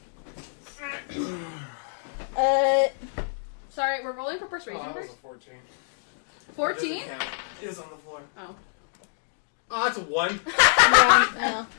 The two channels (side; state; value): right; silent; digital silence